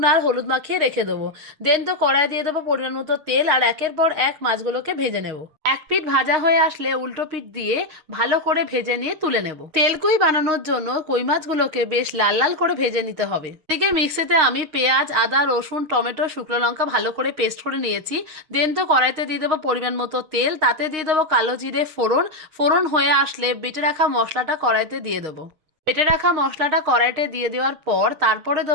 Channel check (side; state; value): left; late; 6.5 ms